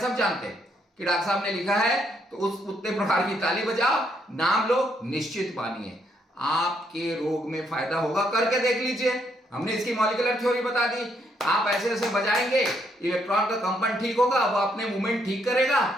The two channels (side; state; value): both; normal; correlation 0.74